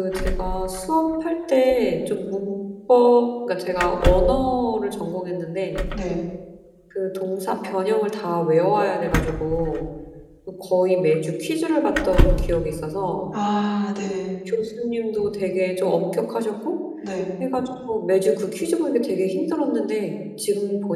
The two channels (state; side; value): identical; both; correlation 1.00